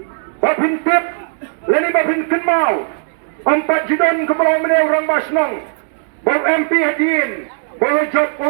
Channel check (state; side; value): silent; left; digital silence